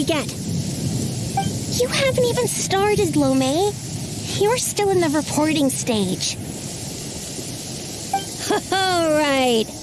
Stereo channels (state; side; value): identical; both; correlation 1.00